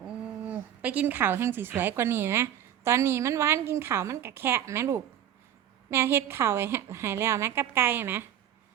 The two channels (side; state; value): left; quieter; 10.5 dB